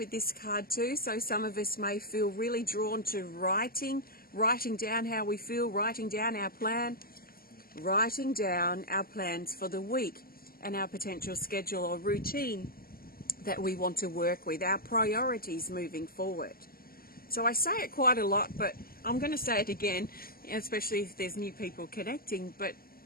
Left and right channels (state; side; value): late; right; 0.42 ms